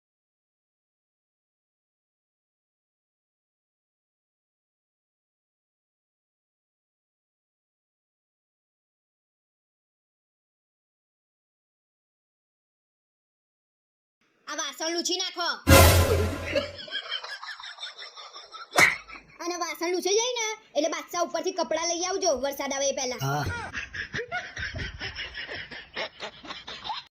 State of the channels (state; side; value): identical; both; correlation 1.00